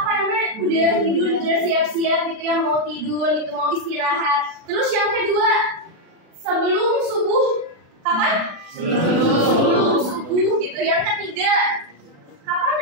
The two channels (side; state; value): left; late; 36 ms